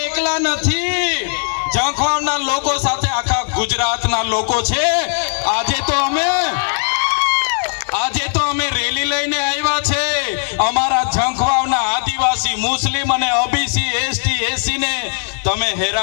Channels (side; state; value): right; silent; 59 dB below the other